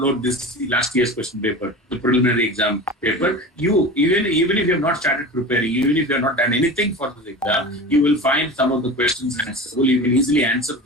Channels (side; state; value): both; normal; correlation 0.31